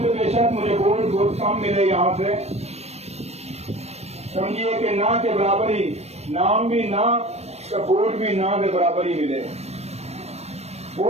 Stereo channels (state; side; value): late; left; 0.31 ms